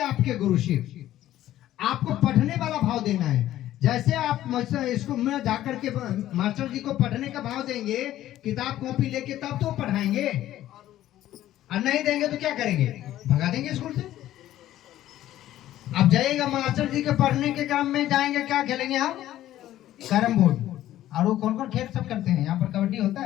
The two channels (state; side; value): quieter; right; 13.4 dB